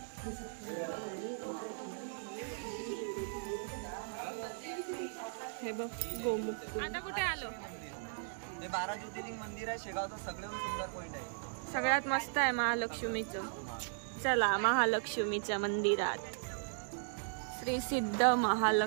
हे बघ गोमुख. आता कुठे आलो? हे 12 ज्योतिर्लिंग मंदिर आहे शेगावचं, सगळ्यात सुंदर पॉइंट आहे. सगळ्यात मस्त आहे महालक्ष्मीचं. चला महालक्ष्मीच्या मंदिरात. श्री सिद्ध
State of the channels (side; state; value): left; silent; digital silence